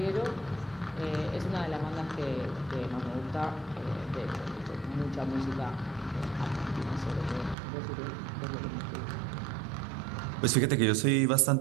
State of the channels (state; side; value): drops out; left; at 7.6 s